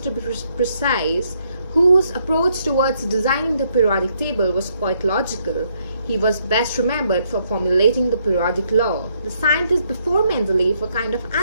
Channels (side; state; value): both; inverted; correlation -0.73